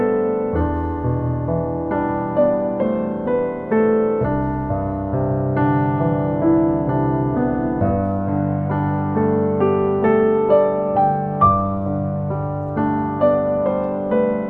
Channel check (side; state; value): both; identical; correlation 1.00